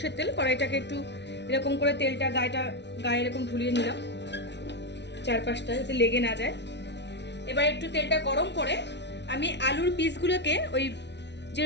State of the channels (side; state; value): right; late; 0.50 ms